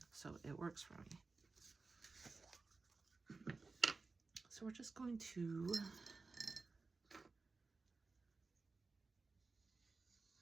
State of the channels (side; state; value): left; quieter; 4.0 dB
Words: so it works for me. So we're just going to